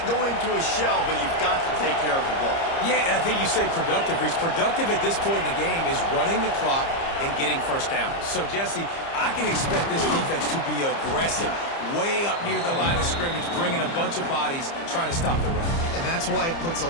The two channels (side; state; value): right; late; 30 ms